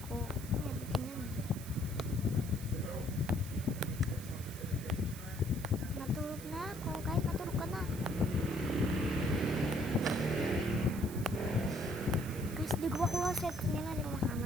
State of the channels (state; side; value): noise; right; hiss, 14 dB below the sound